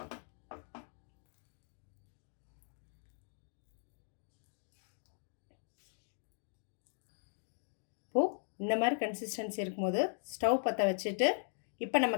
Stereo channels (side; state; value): right; silent; digital silence